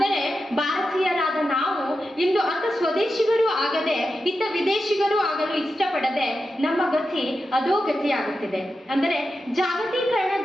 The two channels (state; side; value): normal; both; correlation 0.90